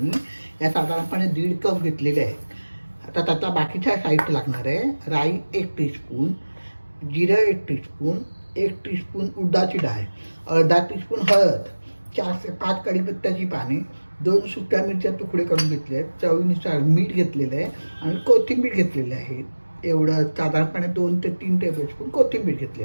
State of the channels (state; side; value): inverted; both; correlation -1.00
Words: या साधारणपणे 1.5 कप घेतलेले आहेत. आता त्याचा बाकीचा साहित्य लागणार आहे. राई 1 टीस्पून, जिरं 1 टीस्पून, 1 टीस्पून उडदाची डाळ, अर्धा टीस्पून हळद, 4 ते 5 कढीपत्त्याची पाने, 2 सुक्या मिरच्या तुकडे करून घेतले आहेत, चवीनुसार मीठ घेतलेलं आहे आणि कोथिंबीर घेतलेली आहे. एवढं साधारणपणे 2 ते 3 टेबलस्पून कोथिंबीर